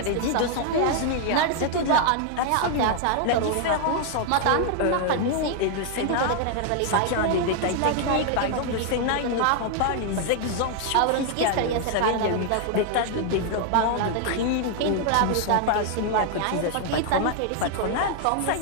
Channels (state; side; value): different; both; correlation 0.00